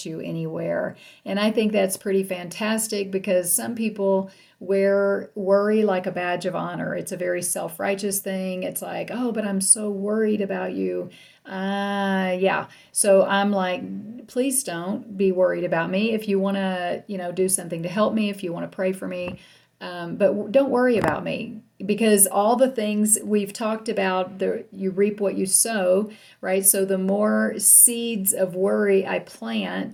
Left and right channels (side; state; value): both; identical; correlation 1.00